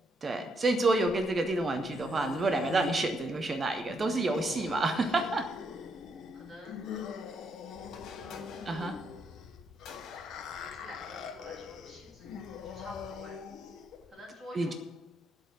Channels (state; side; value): normal; both; correlation 0.76